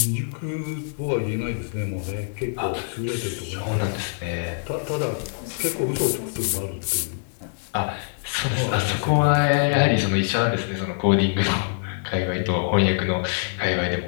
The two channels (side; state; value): right; silent; 62 dB below the other